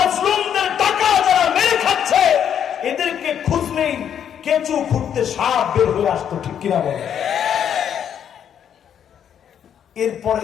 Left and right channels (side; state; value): right; quieter; 8.9 dB